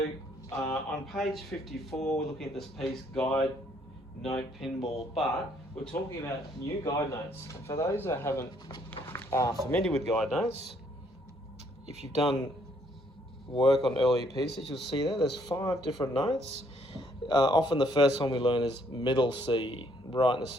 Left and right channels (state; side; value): normal; both; correlation 0.67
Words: on page 54, we're looking at this piece, Guide Note Pinball, but we're talking about new guide notes. And for those that haven't familiar with guide notes, if you've done work on earlier pieces, you'll see there's 5 different notes. Often the first one we learn is middle C, right in the